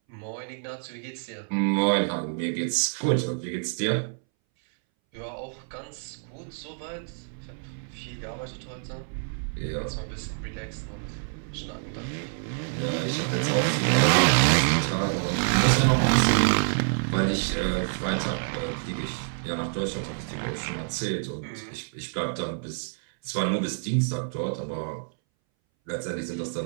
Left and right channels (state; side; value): silent; left; 60 dB below the other